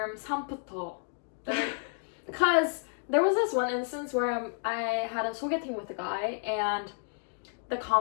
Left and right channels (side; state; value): right; silent; 57 dB below the other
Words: 삼부터, because there was this one instance where I had a 소개팅 with a guy and the